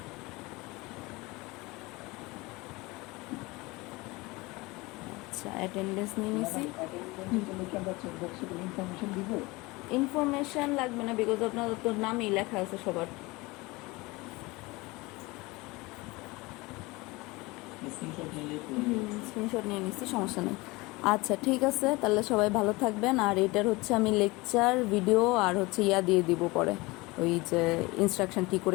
আচ্ছা, অ্যাটেন্ডেন্স নিয়ে নিছি। ইনফরমেশন লাগবে না, বিকজ আপনার তো নামই লেখা আছে সবার। স্ক্রিনশট নিয়ে নিচ্ছি, সমস্যা নেই। আচ্ছা, ঠিক আছে, তাহলে সবাই ভালো থাকবেন। আর এটার হচ্ছে আমি লেকচার ভিডিও আর হচ্ছে দিয়ে দিব পরে, ওই যে ইনস্ট্রাকশন কী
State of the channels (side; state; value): right; quieter; 23.0 dB